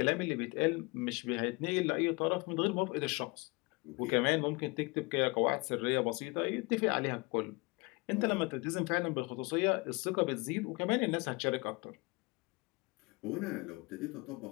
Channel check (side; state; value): right; quieter; 26.7 dB